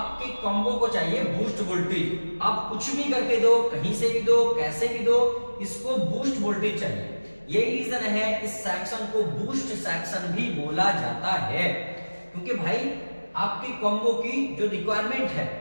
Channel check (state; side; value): inverted; both; correlation -1.00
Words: कॉम्बो को चाहिए बूस्ट वोल्टेज। आप कुछ भी करके दो, कहीं से भी दो, कैसे भी दो, इसको बूस्ट वोल्टेज चाहिए। यही रीजन है इस सेक्शन को बूस्ट सेक्शन भी बोला जाता है, क्योंकि भाई आपकी कॉम्बो की जो रिक्वायरमेंट है